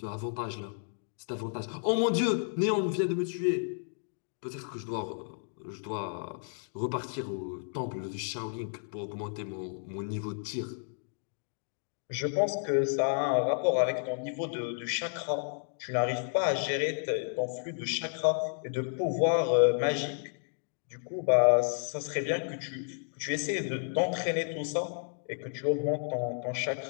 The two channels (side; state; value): right; silent; digital silence